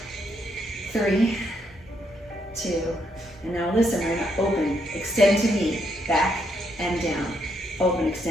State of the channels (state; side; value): normal; both; correlation 0.75